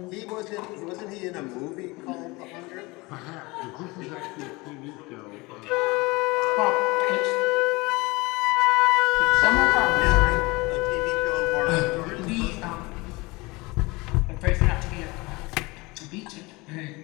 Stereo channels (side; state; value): right; quieter; 23.9 dB